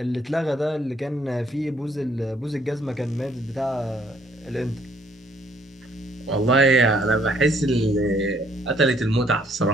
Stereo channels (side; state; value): both; normal; correlation 0.66